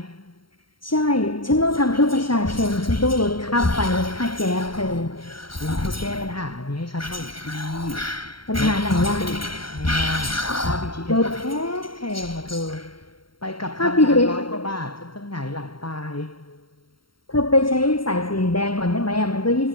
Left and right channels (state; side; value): late; right; 0.73 ms